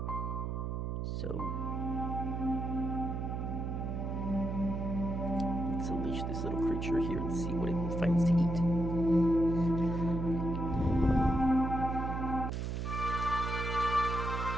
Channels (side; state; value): right; noise; hum, 2 dB below the sound